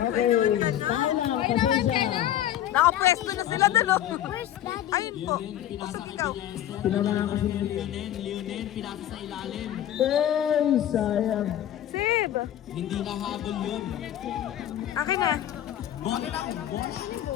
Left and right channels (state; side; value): quieter; right; 11.7 dB